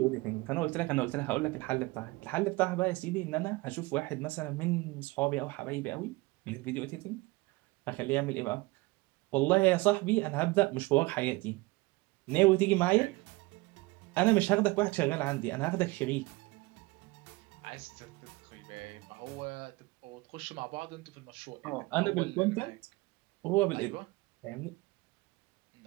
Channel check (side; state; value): left; quieter; 22.6 dB